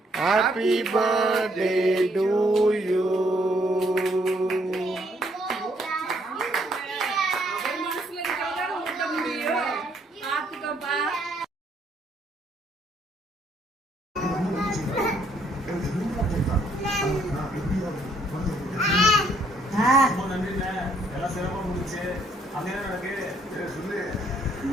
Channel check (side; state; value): both; normal; correlation 0.68